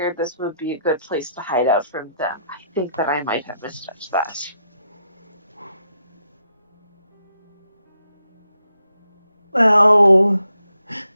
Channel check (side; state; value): both; inverted; correlation -0.78